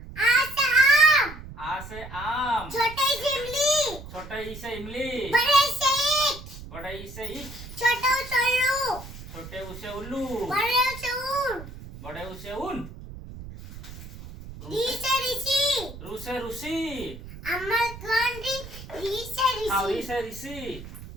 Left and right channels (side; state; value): right; noise; rumble, 13 dB below the sound